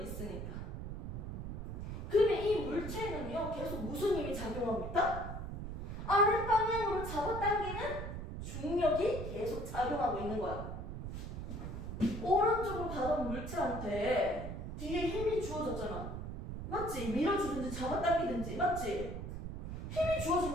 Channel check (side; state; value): right; noise; rumble, 6 dB below the sound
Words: 있으니까. 그러면 이 물체는요 계속 무슨 힘이 작용하고 있다? 아랫 방향으로 잡아당기는 중력이 계속 작용하고 있는 거야. 오른쪽으로 가던 물체한테 뒤에 힘이 주어졌잖아. 맞지? 밀어주든지 잡아당기든지. 맞지? 힘이 주어진